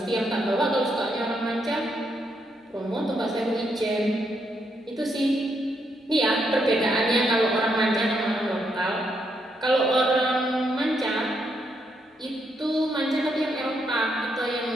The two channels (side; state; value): both; normal; correlation 0.78